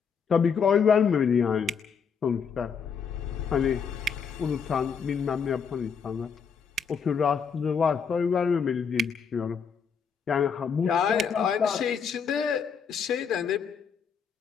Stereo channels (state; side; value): quieter; right; 6.3 dB